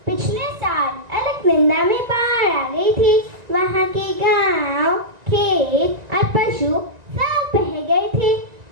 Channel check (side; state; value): left; late; 1.9 ms